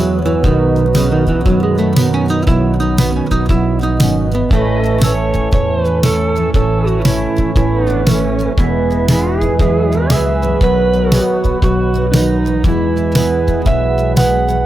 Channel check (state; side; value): normal; both; correlation 0.91